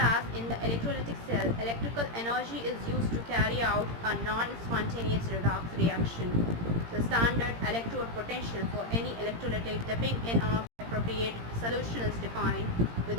in the electrolytic cell, electrical energy is used to carry out a non-spontaneous redox reaction. The standard electrode potential for any electrolytic dipping in an appropriate solution is defined with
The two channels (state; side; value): late; left; 17 ms